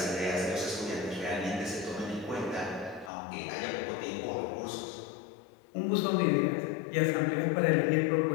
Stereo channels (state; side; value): drops out; right; at 3.1 s